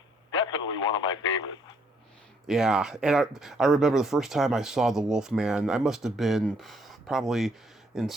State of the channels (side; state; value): both; normal; correlation 0.68